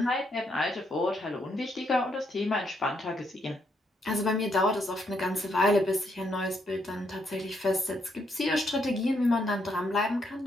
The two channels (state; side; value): normal; both; correlation 0.75